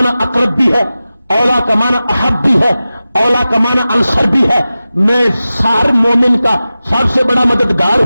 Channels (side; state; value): both; inverted; correlation -0.95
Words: اقرب بھی ہے، اولا کا معنی احب بھی ہے، اولا کا معنی انصر بھی ہے. میں ہر مومن کا سب سے بڑا مددگار